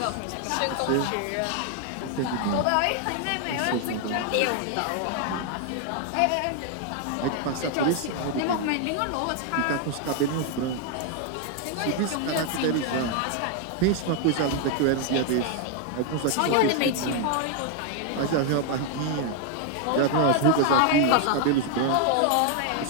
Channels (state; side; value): different; both; correlation 0.00